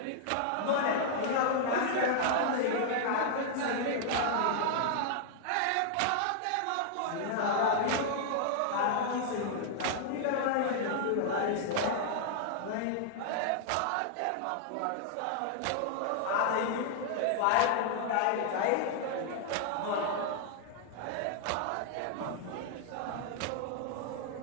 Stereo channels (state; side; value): different; both; correlation -0.01